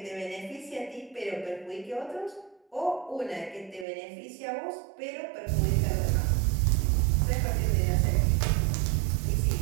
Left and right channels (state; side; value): drops out; left; at 3.9 s